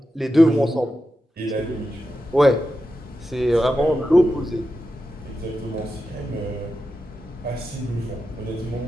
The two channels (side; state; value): both; normal; correlation 0.90